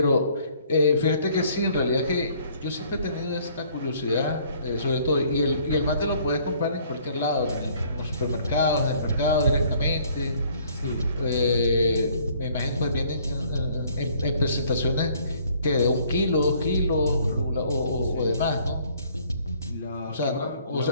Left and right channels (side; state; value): both; inverted; correlation -0.60